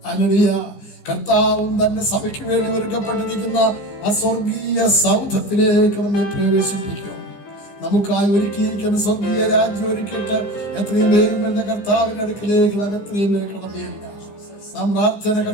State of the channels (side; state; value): right; late; 15 ms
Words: ഹല്ലേലൂയ. കർത്താവും തന്റെ സഭയ്ക്ക് വേണ്ടി ഒരുക്കപ്പെട്ടിരിക്കുന്ന ആ സ്വർഗീയ സൗധത്തിലേക്ക് നമ്മെ പ്രവേശിപ്പിക്കും. നമുക്കായി ഒരുക്കിയിരിക്കുന്ന സ്വർഗീയ രാജ്യം ഒരുക്കിയിട്ട് എത്രയും വേഗം എന്ന കർത്താവിന്റെ അടുക്കിലേക്ക് നാം എത്രയും കടമയല്ല. നാം പ്രാർത്ഥന